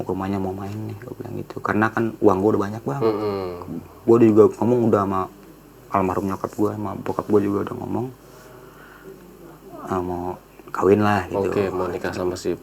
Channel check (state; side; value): identical; both; correlation 1.00